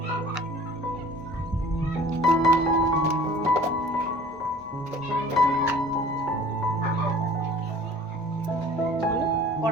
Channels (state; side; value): normal; both; correlation 0.47